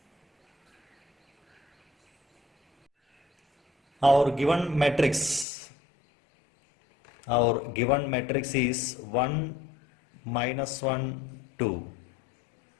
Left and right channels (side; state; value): right; drops out; at 5.5 s